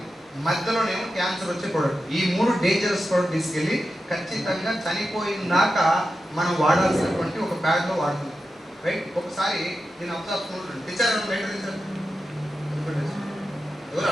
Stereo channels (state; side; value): normal; both; correlation 0.91